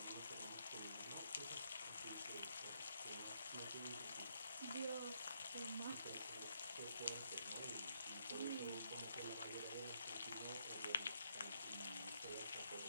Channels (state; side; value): inverted; both; correlation -0.75